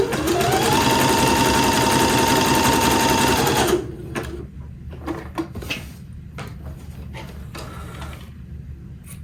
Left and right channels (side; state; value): both; identical; correlation 1.00